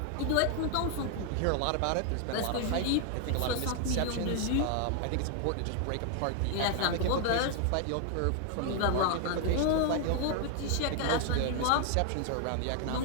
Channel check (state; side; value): different; both; correlation 0.00